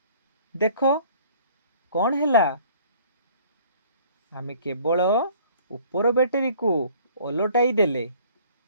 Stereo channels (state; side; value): inverted; both; correlation -0.54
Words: ଦେଖ କ'ଣ ହେଲା। ଆମେ କେବଳ ଉପର ବ୍ୟାଟେରୀକୁ ଓଲଟାଇ ଦେଲେ,